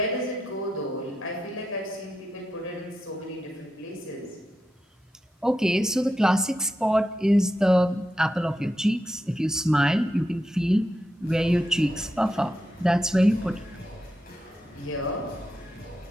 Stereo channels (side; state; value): both; normal; correlation 0.87